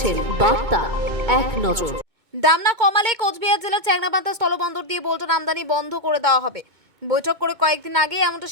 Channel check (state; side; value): late; left; 2.2 ms